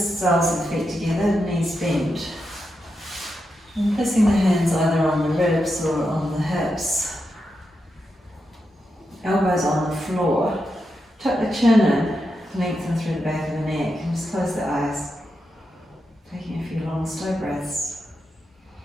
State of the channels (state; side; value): normal; both; correlation 0.86